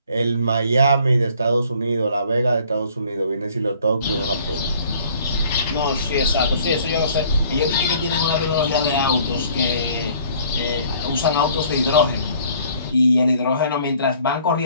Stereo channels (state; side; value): inverted; both; correlation -0.56